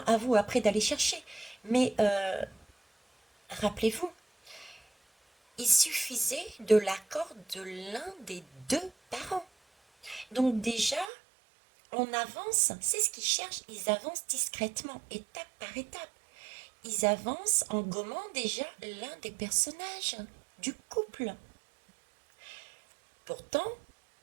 à vous après d'aller chercher, mais rappelez-vous, il suffisait de l'accord de l'un des deux parents. Donc déjà, on avance, c'est ce qu'ils cherchent, ils avancent discrètement, étape par étape. Ils avancent en gommant déjà l'un des personnages du couple. Pourtant,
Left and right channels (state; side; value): drops out; left; at 11.1 s